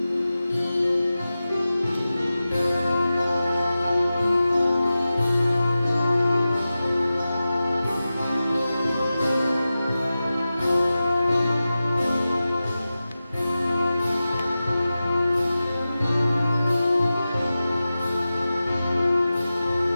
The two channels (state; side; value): inverted; both; correlation -0.94